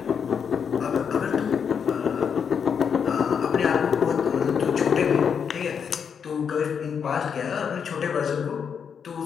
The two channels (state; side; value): quieter; right; 7.0 dB